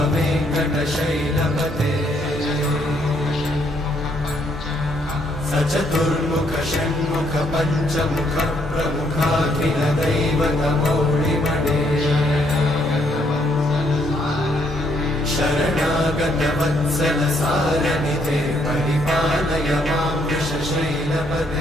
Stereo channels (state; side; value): normal; both; correlation 0.71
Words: वेङ्कटशैलपते सचतुर्मुख षण्मुख पञ्चमुख प्रमुखाखिल दैवतमौलिमणे शरणागत वत्सल सारनिधे परिपालय मां